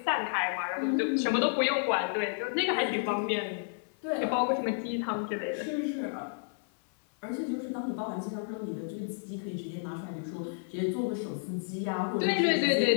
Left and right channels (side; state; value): right; silent; 57 dB below the other